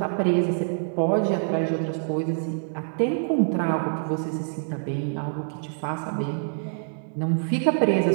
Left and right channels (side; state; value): left; silent; digital silence